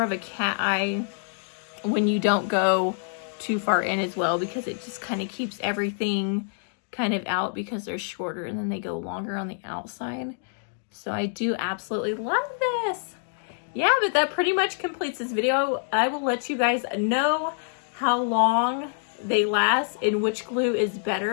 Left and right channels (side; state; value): right; silent; digital silence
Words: of a cat eye when you don't go too far in as well, because it just kind of keeps everything kind of out because they're shorter and then they go longer on the outside. So I do absolutely love this. Yeah, but that pretty much completes this video. I will let you guys know how long they last and which glue is